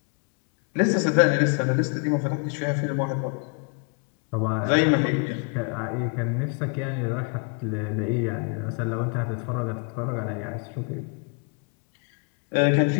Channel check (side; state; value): right; quieter; 37.8 dB